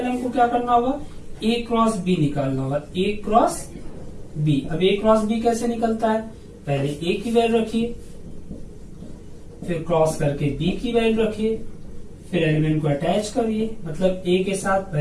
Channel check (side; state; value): both; identical; correlation 1.00